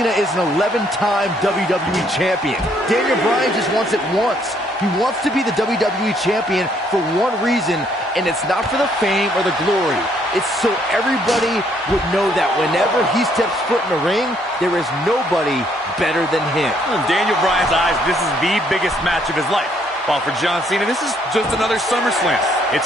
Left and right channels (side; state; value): both; normal; correlation 0.68